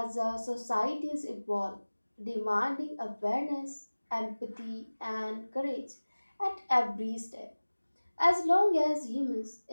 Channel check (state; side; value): inverted; both; correlation -1.00